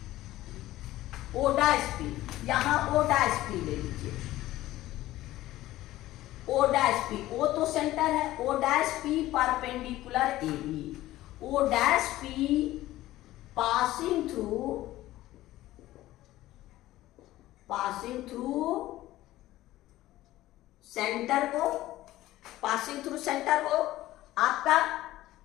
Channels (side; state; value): right; quieter; 15.8 dB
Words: O डैश P, यहां O डैश P ले लीजिए, O डैश P, O तो सेंटर है, O dash P perpendicular AB, O dash P passing through centre को आपका।